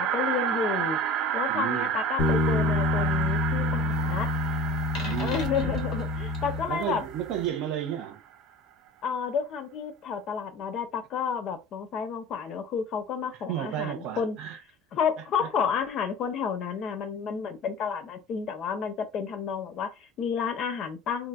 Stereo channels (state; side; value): normal; both; correlation 0.39